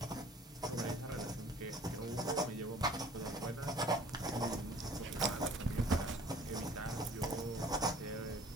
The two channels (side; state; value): both; normal; correlation 0.52